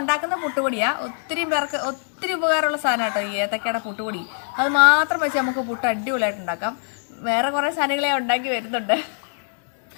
ഉണ്ടാക്കുന്ന പുട്ടുപൊടിയാണ് ഒത്തിരി പേർക്ക് ഒത്തിരി ഉപകാരമുള്ള സാധനം കേട്ടോ ഈ ഏത്തക്കയുടെ പുട്ടുപൊടി. അത് മാത്രം വെച്ച് നമുക്ക് പുട്ട് അടിപൊളിയായിട്ട് ഉണ്ടാക്കാം. വേറെ കുറേ സാധനങ്ങളെ ഉണ്ടാക്കി വരുന്നുണ്ട്.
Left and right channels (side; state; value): right; silent; digital silence